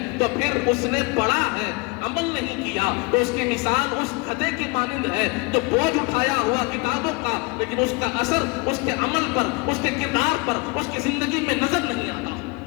تو پھر اس نے پڑھا ہے عمل نہیں کیا تو اس کی مثال اس کھدے کی مانند ہے جو بوجھ اٹھایا ہوا کتابوں کا لیکن اس کا اثر اس کے عمل پر، اس کے کردار پر، اس کی زندگی میں نظر نہیں آتا۔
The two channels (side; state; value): right; quieter; 28.5 dB